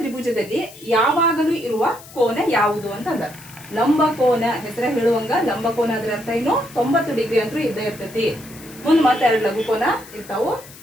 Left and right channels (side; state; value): left; noise; hiss, 19 dB below the sound